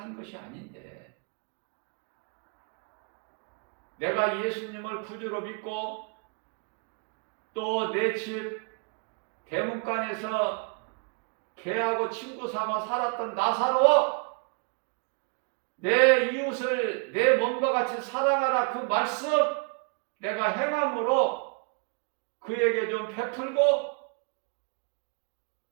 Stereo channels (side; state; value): left; quieter; 35.2 dB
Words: 것이 아닌데. 내가 예수님을 구주로 믿고 또 내 집 대문간에서 개하고 친구 삼아 살았던 나사로, 내 이웃을 내 몸과 같이 사랑하라 그 말씀 내가 행함으로 그에게 좀 베풀고